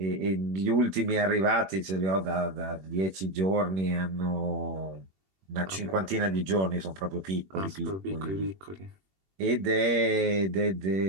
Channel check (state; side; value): late; left; 21 ms